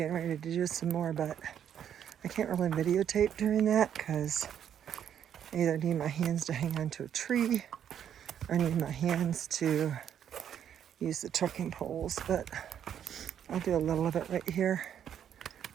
ready to do some more, but I can't really videotape during that because I either need my hands to hang onto a tree or I need my hands to use the trekking poles, but I'll do a little of it right here.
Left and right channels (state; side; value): quieter; left; 9.3 dB